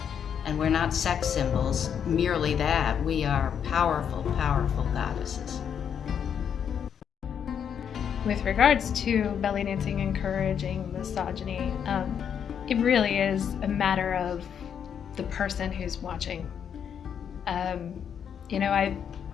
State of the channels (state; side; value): quieter; right; 8.1 dB